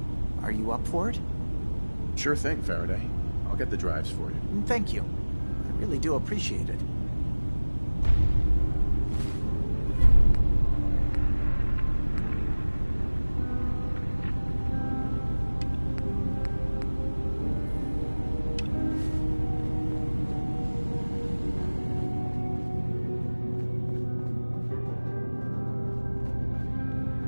are you up for it? Sure thing, Faraday. I'll get the drives for you. Thank you. I really do appreciate it.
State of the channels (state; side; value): inverted; both; correlation -1.00